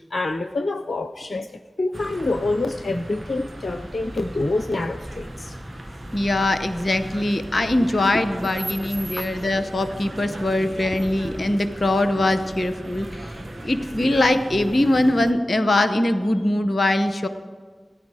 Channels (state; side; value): normal; both; correlation 0.94